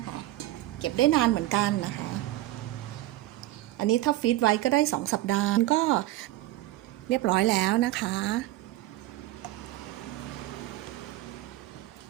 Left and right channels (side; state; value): left; quieter; 16.3 dB